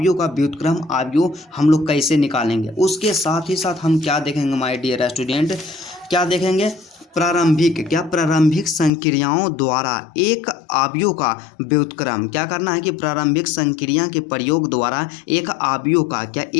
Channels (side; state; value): right; drops out; at 8.9 s